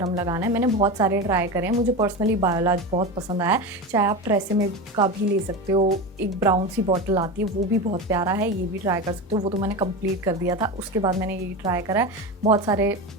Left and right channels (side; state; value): both; normal; correlation 0.22